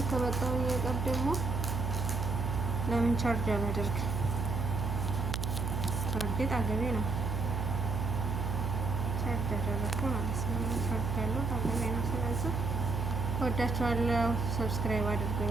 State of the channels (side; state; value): right; noise; hum, 1 dB below the sound